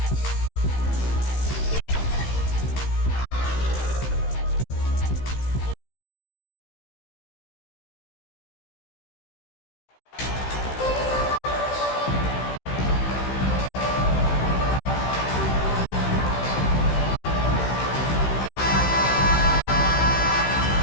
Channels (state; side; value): late; right; 15 ms